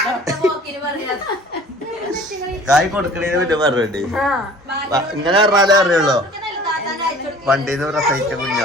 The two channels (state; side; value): normal; both; correlation 0.48